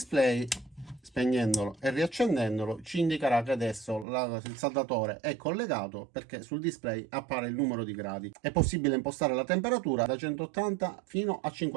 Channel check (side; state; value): left; drops out; at 4.0 s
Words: spegnendolo e riaccendendolo, ci indicherà che adesso il saldatore è collegato, perché sul display appare il numero di gradi. È possibile impostare la temperatura da 180 fino a